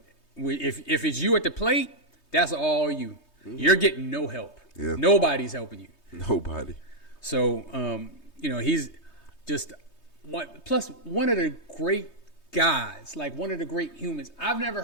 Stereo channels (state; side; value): late; right; 3.2 ms